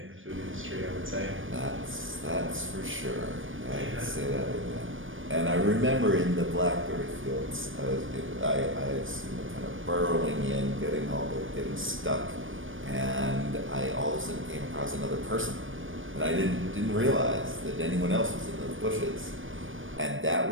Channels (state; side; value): late; left; 0.57 ms